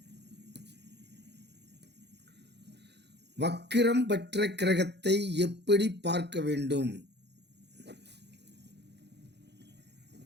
வக்கிரம் பெற்ற கிரகத்தை எப்படி பார்க்க வேண்டும்?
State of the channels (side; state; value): left; late; 0.50 ms